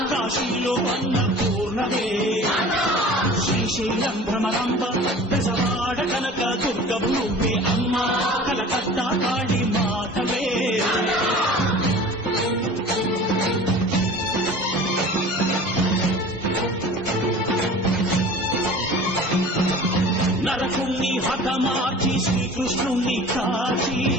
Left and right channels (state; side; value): normal; both; correlation 0.42